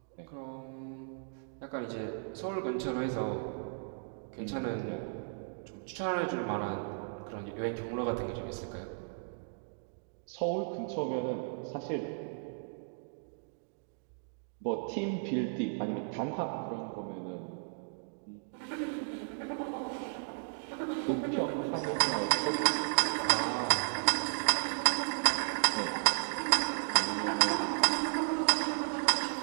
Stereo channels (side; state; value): left; silent; digital silence